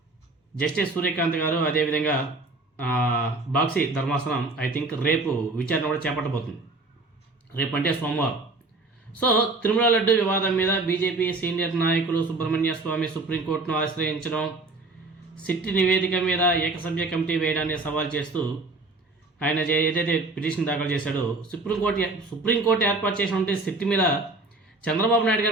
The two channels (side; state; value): left; quieter; 3.2 dB